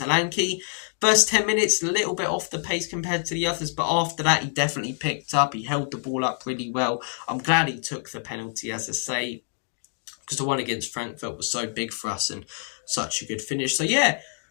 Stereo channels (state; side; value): silent; right; digital silence